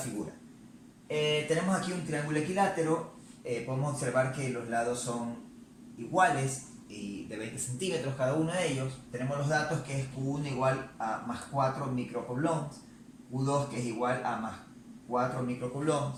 Tenemos aquí un triángulo equilátero, podemos observar que los lados son iguales y de 20 centímetros cada uno de ellos. Tenemos los datos que es Q1 igual a más 4 microcoulombs, Q2 que es igual a más 4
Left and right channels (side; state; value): both; identical; correlation 1.00